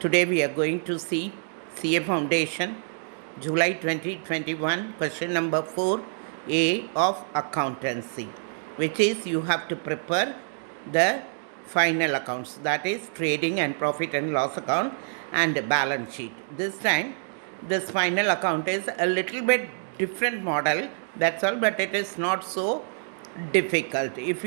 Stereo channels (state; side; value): silent; left; digital silence